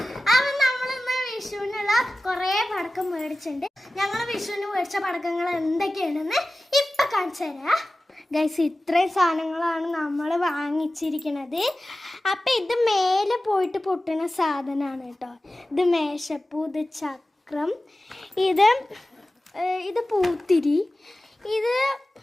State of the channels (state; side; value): normal; both; correlation 0.96